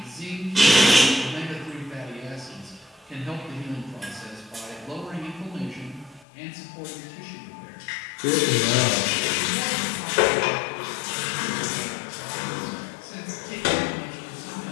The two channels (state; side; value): drops out; right; at 6.2 s